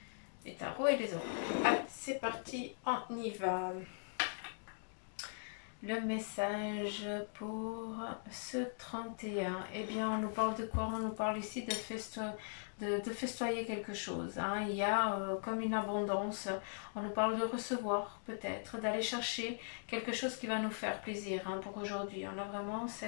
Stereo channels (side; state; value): right; silent; digital silence